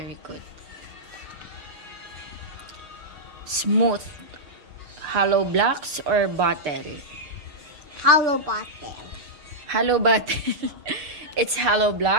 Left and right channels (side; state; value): left; late; 6.8 ms